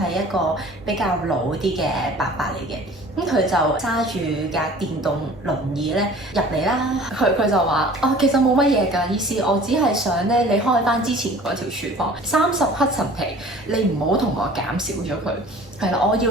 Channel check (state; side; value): normal; both; correlation 0.46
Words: 一個比較老啲嘅伯伯嚟嘅，咁佢就揸住架電動輪椅咧入嚟啦。佢就話：哦，其實冇乜嘢㗎，醫師，我只係想咧你開翻之前嗰條廚房30黑陳皮，你唔好同我減少咗佢。係啦，我要